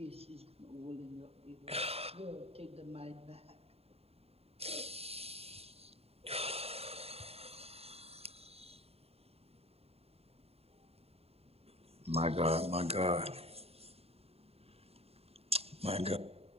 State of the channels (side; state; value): left; late; 0.29 ms